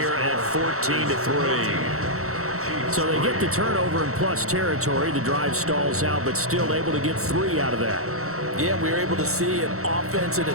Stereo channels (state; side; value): late; left; 0.64 ms